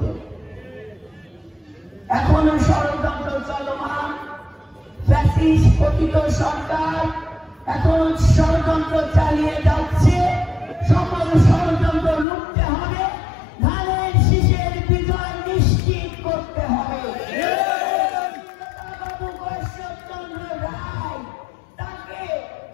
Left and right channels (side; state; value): right; drops out; at 12.2 s